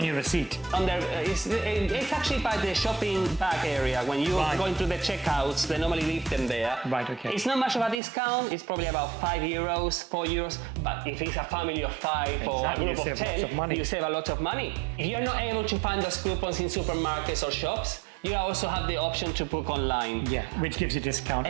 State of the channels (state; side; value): drops out; left; at 8.0 s